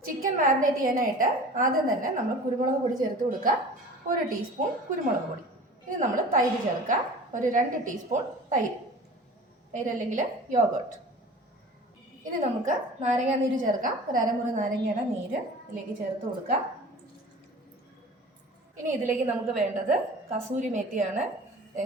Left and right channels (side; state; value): both; normal; correlation 0.41